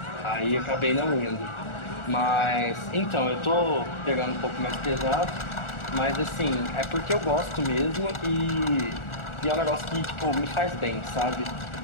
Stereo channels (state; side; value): late; right; 1.4 ms